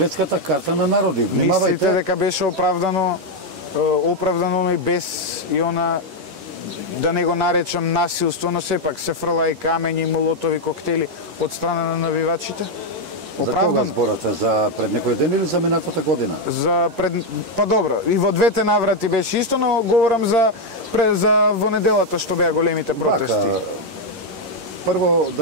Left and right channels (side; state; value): left; late; 11 ms